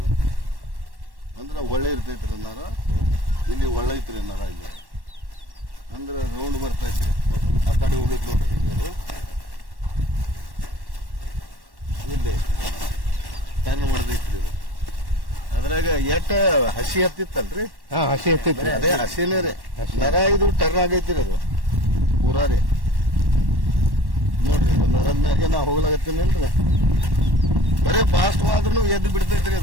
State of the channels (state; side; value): late; left; 1.1 ms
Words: ಅಂದ್ರ ಒಳ್ಳೆ ಇರ್ತೈತ್ರಿ ನರ. ಇಲ್ಲಿ ಒಳ್ಳೆ ಐತ್ರಿ ನರ. ಇಲ್ಲಿ ಅಂದ್ರ ರೌಂಡ್ ಬರ್ತೈತ್ರಿ. ಆ ಕಡೆ ಹೋಗೈತಿ ನೋಡ್ರಿ ಹಿಂಗೆ ಇಲ್ಲಿ ಟರ್ನ್ ಮಾಡ್ದೈತ್ರಿ ಇದು. ಅದ್ರಾಗ ಎಟ್ಟ ಹಸಿ ಹತ್ತಿತ್ತಲ್ರಿ? ಹಸಿ ಹತ್ತಿತ್ರಿ. ಅದೇ ಹಸಿನೇ ರೀ ನರ. ಇದು ಟರ್ನ್ ಆಗೈತ್ರಿ ಅದು ಪೂರಾ ರೀ. ನೋಡ್ರಿ ನರದ ಮ್ಯಾಗೆ ನಾ ಹೋಗ್ಲಾಗತ್ತೀನಿಲ್ರಿ, ಬರೀ ಫಾಸ್ಟ್ ಆದ್ರೂ ಎದ್ದು ಬಿಡ್ತೈತ್ರಿ